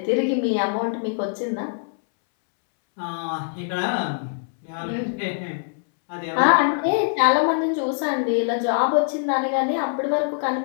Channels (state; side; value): silent; right; 63 dB below the other